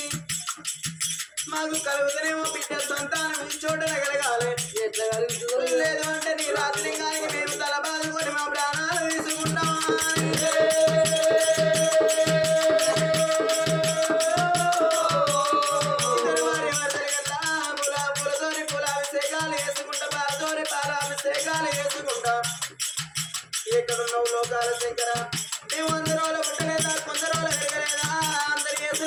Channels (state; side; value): identical; both; correlation 1.00